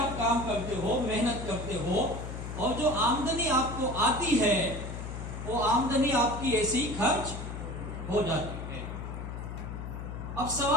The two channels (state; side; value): noise; left; hum, 7 dB below the sound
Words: काम करते हो, मेहनत करते हो, और जो आमदनी आपको आती है वो आमदनी आपकी ऐसी खर्च हो जाती है। अब